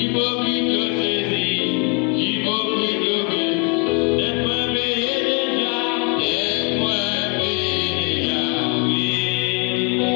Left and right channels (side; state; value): right; quieter; 34.6 dB